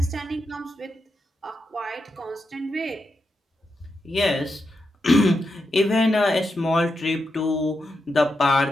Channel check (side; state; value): both; normal; correlation 0.86